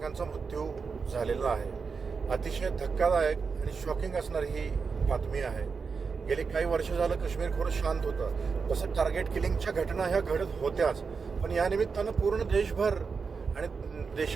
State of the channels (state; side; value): quieter; left; 5.2 dB